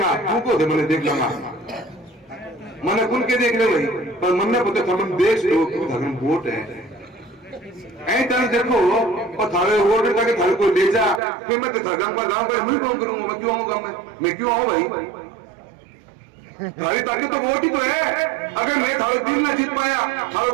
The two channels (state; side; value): drops out; left; at 11.2 s